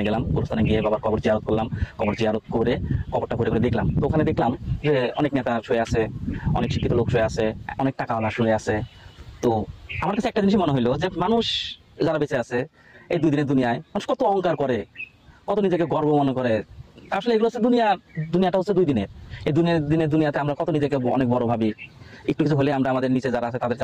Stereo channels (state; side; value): identical; both; correlation 1.00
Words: গেলাম, গোরস্থানে গিয়ে বাবার কবর জিয়ারত করলাম। কবর জিয়ারত করে কবরটা ঘুরে ঘুরে দেখলাম, তো ওখানে দেখলাম যে অনেক নেতা শুয়ে আছে, অনেক শিক্ষিত লোক শুয়ে আছে, অনেক টাকাওয়ালা শুয়ে আছে। তো আমার কাছে একটা জিনিস মনে হইলো যে মানুষ যারা বেঁচে আছে এই দুই দিনের দুনিয়ায়, মানুষ কত অহংকার করে, কত নিজেকে গর্ব মনে করে। আসলে এগুলো হচ্ছে দুনিয়া, দুনিয়াটা হচ্ছে দুই দিনের। এই দিনের দুনিয়াতে আমরা কত নিজেকে অনেক বড় ভাবি, একটু কিছু হলে আমরা আমাদের নিচে যারা আছে তাদেরকে